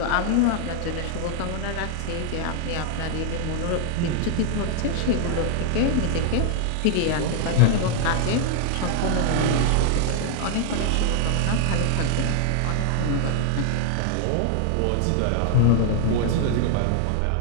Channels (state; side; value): different; both; correlation 0.00